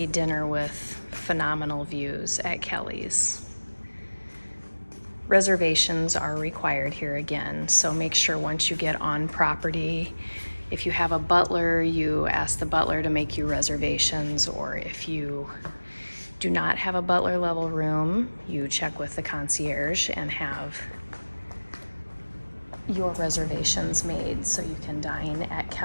dinner with phenomenal views at Kelly's. Reservations are required here again, so make sure once you get on property, if you have a butler, you ask the butler to make you reservations, or if you do not have a butler level room, you check with the concierge and have your reservations made so you can dine at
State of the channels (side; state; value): both; inverted; correlation -1.00